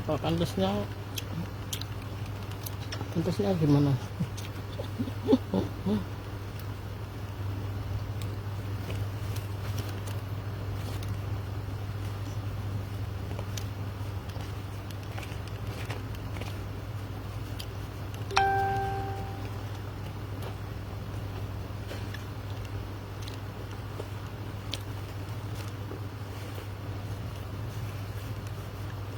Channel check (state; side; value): identical; both; correlation 1.00